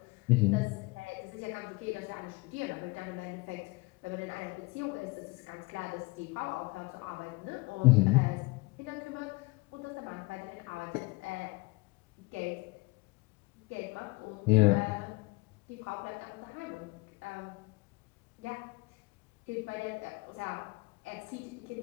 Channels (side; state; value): right; quieter; 24.2 dB